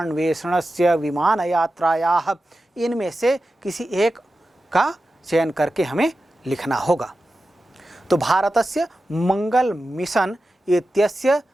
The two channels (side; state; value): both; normal; correlation 0.92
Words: विमानयात्रायाः, इनमें से किसी एक का चयन करके हमें लिखना होगा। तो भारतस्य मंगल मिशन इत्यस्य